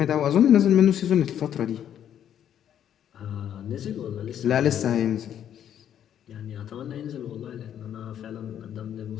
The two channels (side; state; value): right; quieter; 9.9 dB